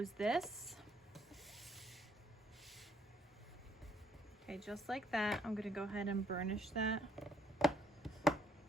this. Okay, just like that. I'm gonna go ahead and burnish that.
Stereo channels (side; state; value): both; normal; correlation 0.68